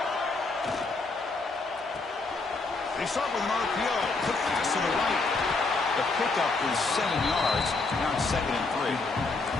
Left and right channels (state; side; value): quieter; right; 3.7 dB